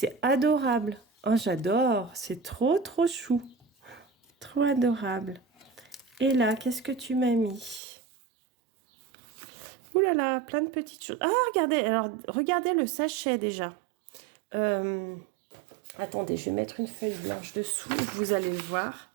adorable. Oh, j'adore. C'est trop, trop chou. Trop adorable. Et là, qu'est-ce que tu m'as mis? Ouh là là, plein de petites choses. Ah, regardez. Alors, regardez le sachet déjà. Attendez, je vais mettre une feuille blanche dessous. Vous allez le voir.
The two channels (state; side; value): drops out; left; at 7.8 s